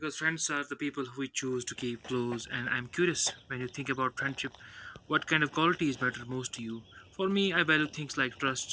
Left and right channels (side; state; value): both; identical; correlation 1.00